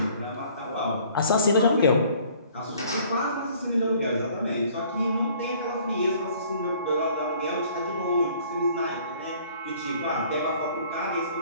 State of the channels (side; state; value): both; inverted; correlation -0.56